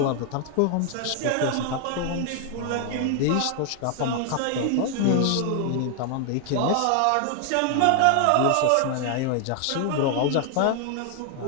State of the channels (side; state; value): both; different; correlation 0.00